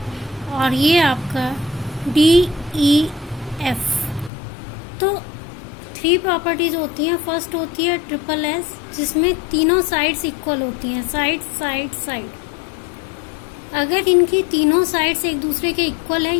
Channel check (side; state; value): right; drops out; at 4.3 s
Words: और ये आपका डी ई एफ, तो 3 प्रॉपर्टीज होती हैं। फर्स्ट होती है ट्रिपल एस, जिसमें तीनों साइड्स इक्वल होती हैं, साइड साइड साइड। अगर इनकी तीनों साइड्स एक दूसरे के इक्वल है,